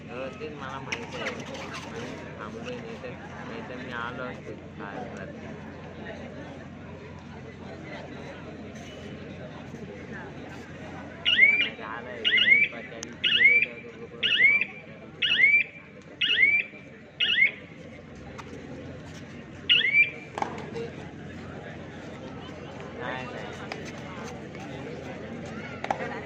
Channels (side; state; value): both; identical; correlation 1.00